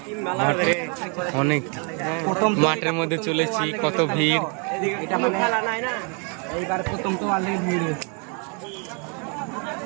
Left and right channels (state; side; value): quieter; left; 36.5 dB